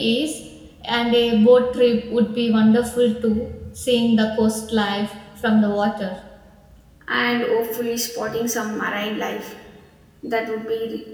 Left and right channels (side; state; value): both; identical; correlation 1.00